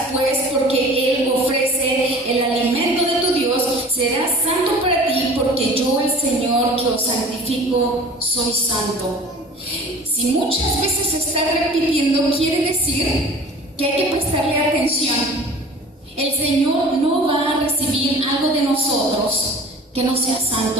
pues, porque Él ofrece el alimento de tu Dios. Serás santo para ti, porque yo, el Señor, que os santifico, soy santo. Si muchas veces se está repitiendo, quiere decir que hay que prestarle atención. El Señor no va a recibir algo de nosotros que no sea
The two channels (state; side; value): normal; both; correlation 0.44